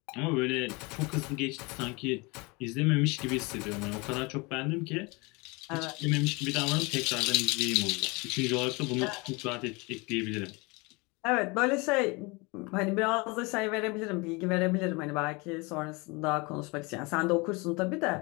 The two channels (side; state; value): right; quieter; 27.1 dB